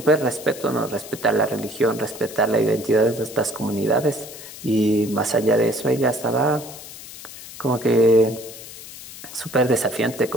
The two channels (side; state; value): left; noise; hiss, 15 dB below the sound